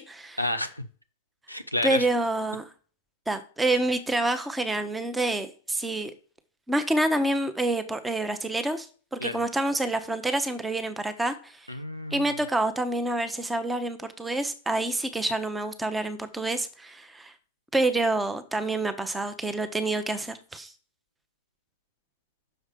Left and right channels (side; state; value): both; normal; correlation 0.72